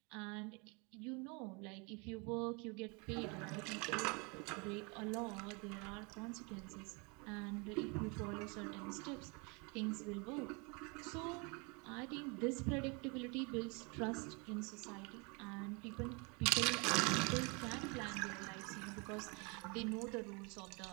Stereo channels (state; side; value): quieter; left; 31.1 dB